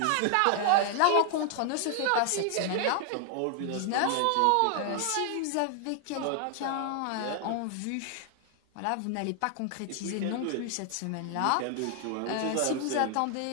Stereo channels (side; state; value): both; different; correlation 0.00